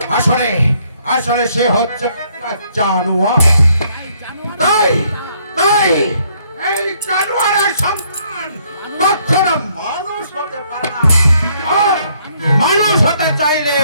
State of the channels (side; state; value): both; inverted; correlation -0.68